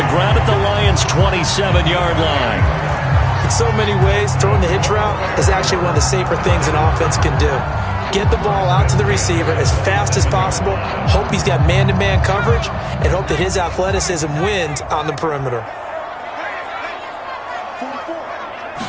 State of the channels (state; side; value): identical; both; correlation 1.00